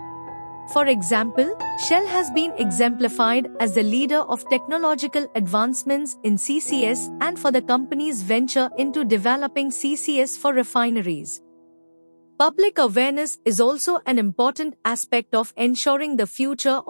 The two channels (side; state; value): both; inverted; correlation -1.00